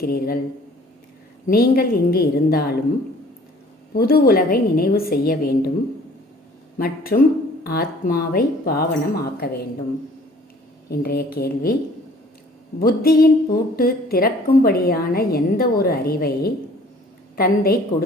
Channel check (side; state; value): both; normal; correlation 0.53